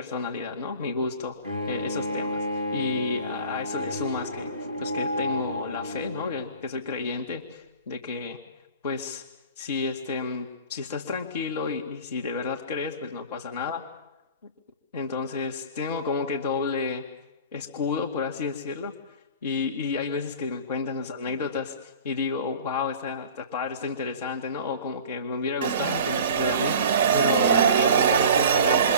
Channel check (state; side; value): inverted; both; correlation -0.42